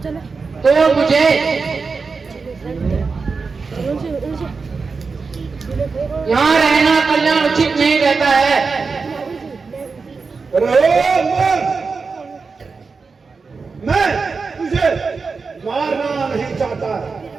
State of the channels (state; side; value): quieter; left; 4.7 dB